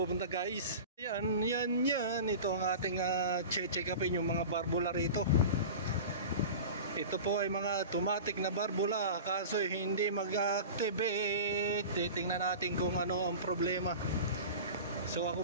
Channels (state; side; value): inverted; both; correlation -0.33